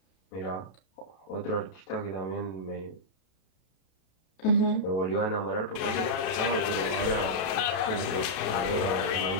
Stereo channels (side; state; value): right; late; 32 ms